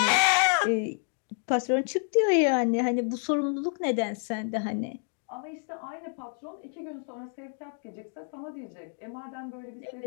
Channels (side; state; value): right; silent; 58 dB below the other